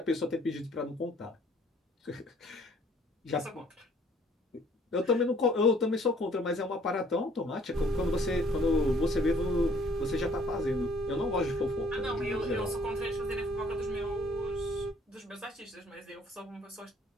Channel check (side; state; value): both; normal; correlation 0.59